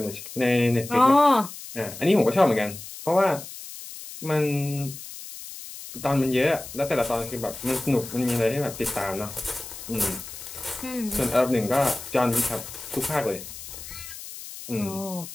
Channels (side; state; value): left; noise; hiss, 12 dB below the sound